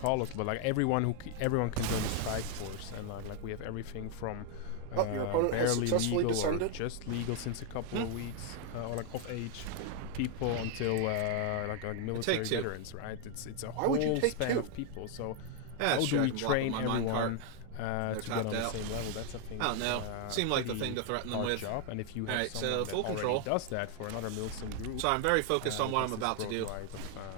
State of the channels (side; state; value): both; different; correlation 0.00